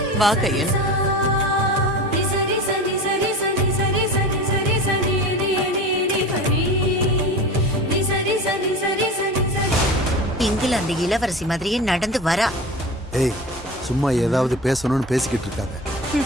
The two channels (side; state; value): both; normal; correlation 0.32